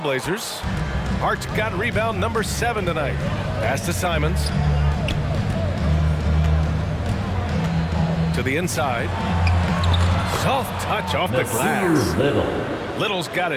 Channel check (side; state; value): both; identical; correlation 1.00